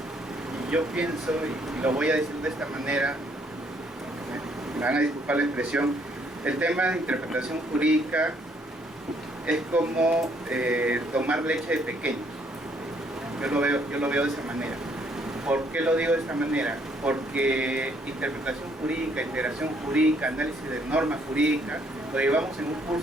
yo pienso, y lo voy a decir de esta manera, me van a disculpar la expresión, el tema de interpretación jurídica es como tomar leche de pequeños. Yo lo veo de esa manera. ¿Por qué lo digo de esta manera? Porque interpretación jurídica, integración jurídica, análisis de normas jurídicas, lo llevamos en un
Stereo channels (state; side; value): normal; both; correlation 0.67